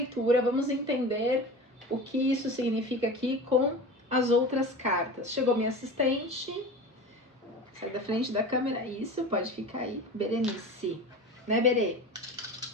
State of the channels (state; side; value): normal; both; correlation 0.33